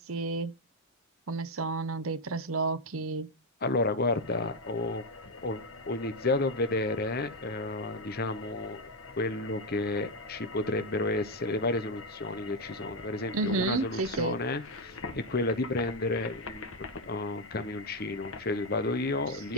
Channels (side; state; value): both; normal; correlation 0.06